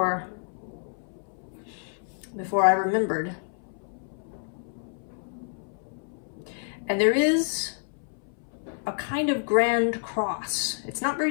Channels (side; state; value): right; silent; 59 dB below the other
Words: I remembered. And there is a kind of grand cross. It's not